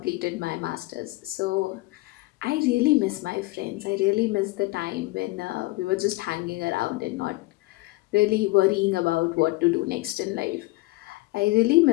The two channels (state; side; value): quieter; right; 21.4 dB